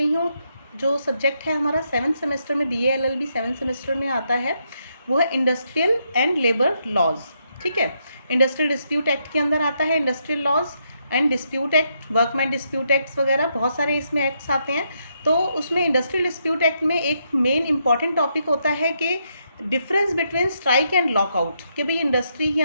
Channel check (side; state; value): both; inverted; correlation -0.78